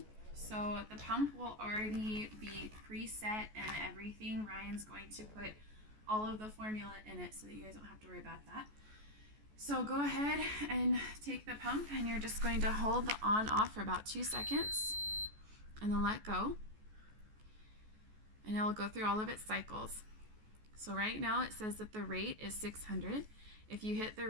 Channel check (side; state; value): left; late; 14 ms